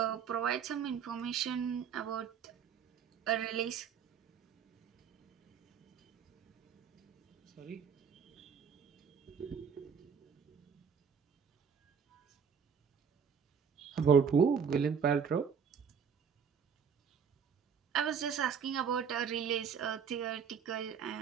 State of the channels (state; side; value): quieter; left; 6.9 dB